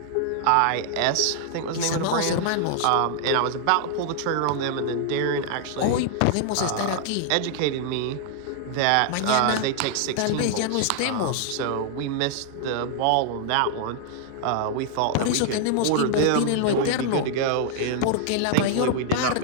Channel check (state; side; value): different; both; correlation 0.00